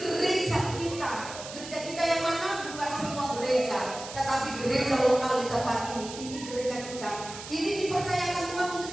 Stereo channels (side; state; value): right; noise; hiss, 12 dB below the sound